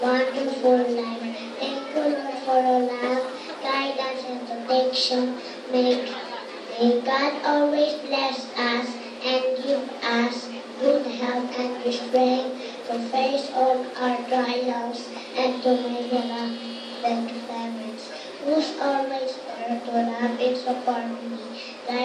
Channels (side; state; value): both; identical; correlation 1.00